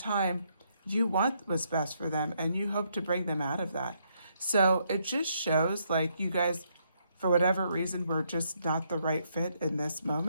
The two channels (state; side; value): inverted; both; correlation -0.74